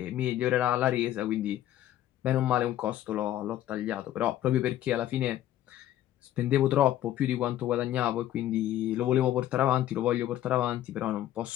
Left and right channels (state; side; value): quieter; right; 12.7 dB